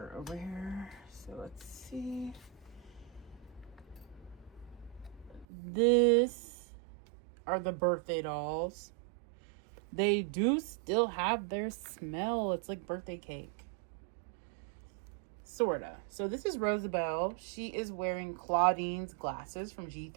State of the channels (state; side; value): drops out; left; at 5.5 s